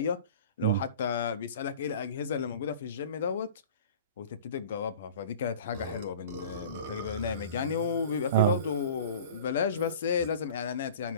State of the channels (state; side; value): inverted; both; correlation -0.40